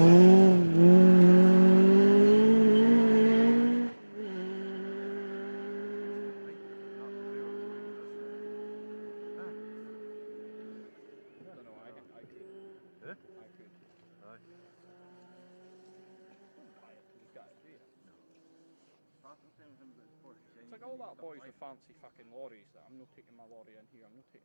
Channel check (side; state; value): both; inverted; correlation -1.00